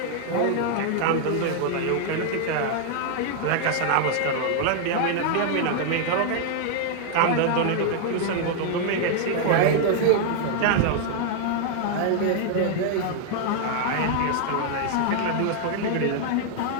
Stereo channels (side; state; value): both; different; correlation 0.00